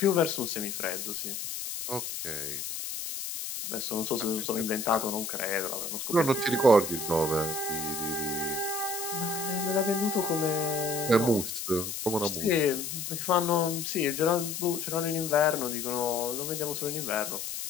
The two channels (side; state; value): left; noise; hiss, 5 dB below the sound